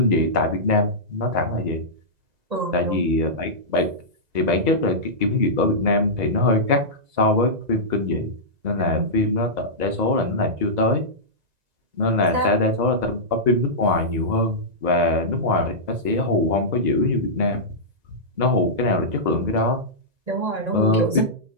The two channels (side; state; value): left; late; 2.0 ms